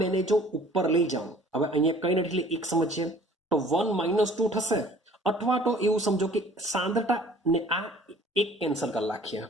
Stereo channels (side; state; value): both; normal; correlation 0.52